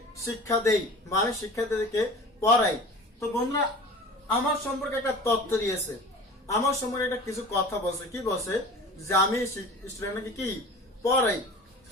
শিক্ষা দেই বা আমি শিক্ষার্থীদেরকে পড়াই। তো বন্ধুরা আমার সম্পর্কে একটা তথ্য দিয়েছে, আমার সম্পর্কে একটা কিছু কথা বলছে। কি বলছে? যে আমি স্টুডেন্টকে কি পড়াই।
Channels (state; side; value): normal; both; correlation 0.39